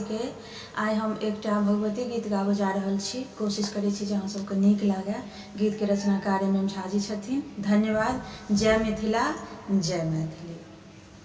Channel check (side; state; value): both; identical; correlation 1.00